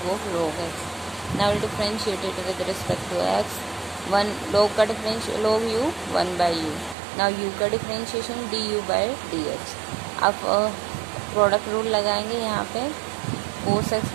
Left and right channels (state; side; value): drops out; left; at 7.0 s